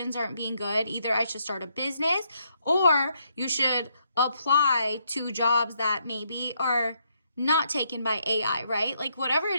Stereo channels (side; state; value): both; inverted; correlation -0.75